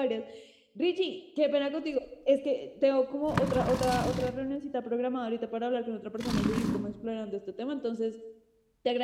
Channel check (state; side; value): identical; both; correlation 1.00